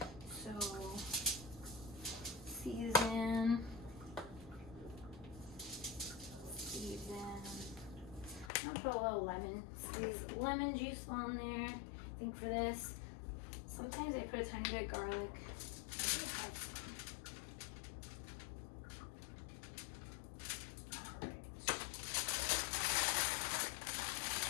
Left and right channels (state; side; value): drops out; right; at 8.5 s